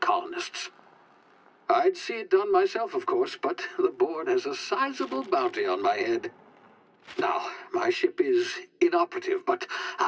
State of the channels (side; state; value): both; identical; correlation 1.00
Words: I'd see it done myself, of course, but the board has a sizable bounty on my head. Now, my ship is inoperative, but